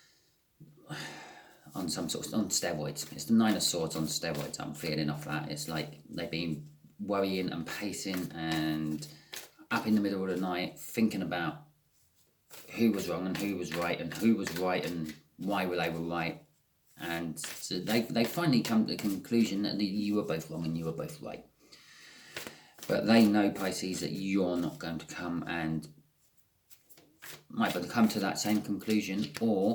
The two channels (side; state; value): both; identical; correlation 1.00